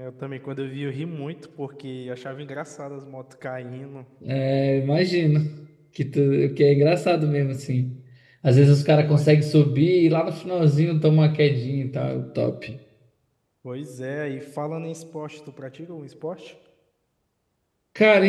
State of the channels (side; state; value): both; identical; correlation 1.00